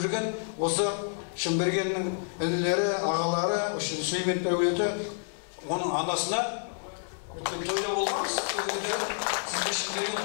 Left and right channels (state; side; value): silent; right; 58 dB below the other